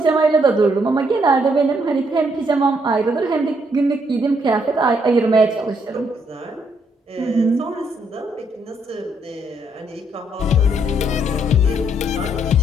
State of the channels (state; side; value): normal; both; correlation 0.72